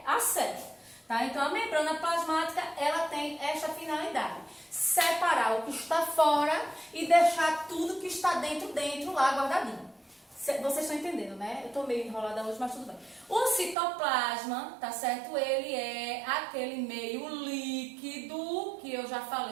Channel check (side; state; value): left; drops out; at 13.8 s